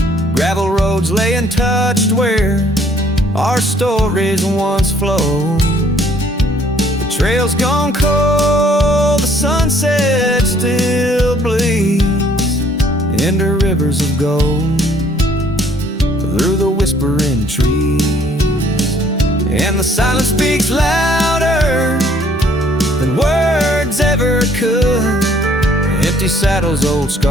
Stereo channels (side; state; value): both; normal; correlation 0.62